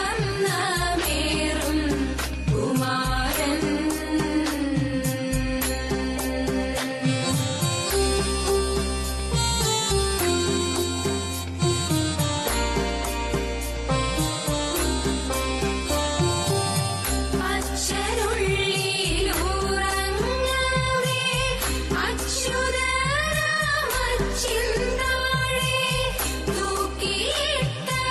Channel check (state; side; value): identical; both; correlation 1.00